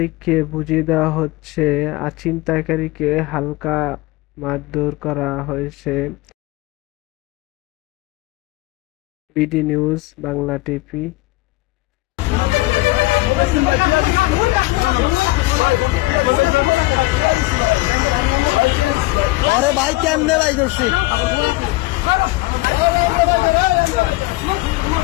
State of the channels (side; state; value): right; quieter; 20.9 dB